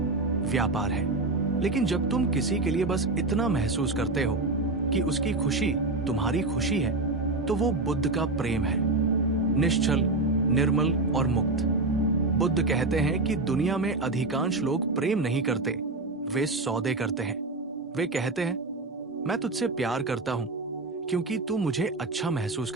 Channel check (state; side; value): quieter; left; 3.1 dB